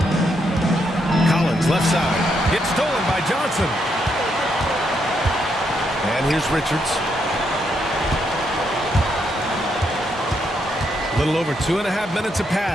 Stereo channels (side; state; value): both; normal; correlation 0.78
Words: Collins left side. Gets stolen by Johnson. And here's Richards. A little over 2.5 minutes have